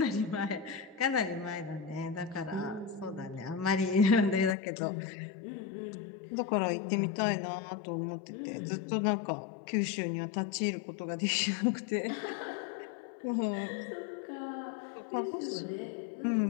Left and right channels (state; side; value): drops out; right; at 4.5 s